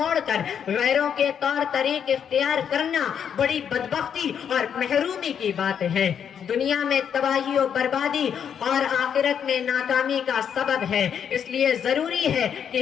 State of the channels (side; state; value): right; quieter; 8.1 dB